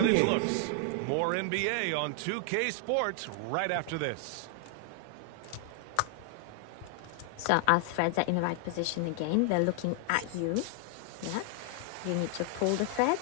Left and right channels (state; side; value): different; both; correlation 0.00